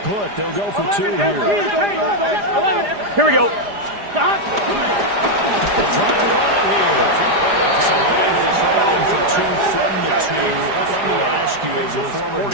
put. They'll go for 2 here. Here we go. They'll try and run it here. So Bengals running for 2 from the 2 from the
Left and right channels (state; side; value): late; left; 4.9 ms